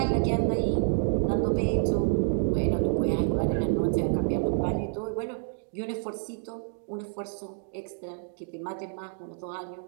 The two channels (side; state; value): left; silent; digital silence